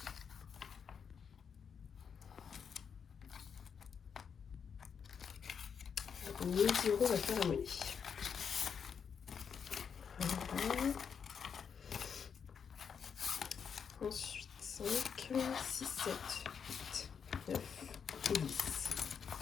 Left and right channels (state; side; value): quieter; right; 6.8 dB